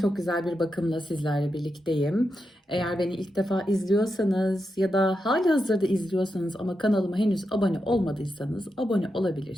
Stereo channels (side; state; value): both; normal; correlation 0.87